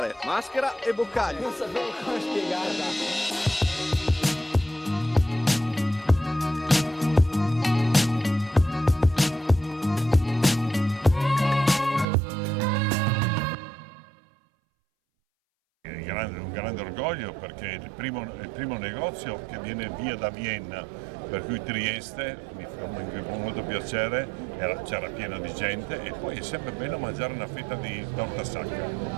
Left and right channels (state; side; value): drops out; left; at 12.1 s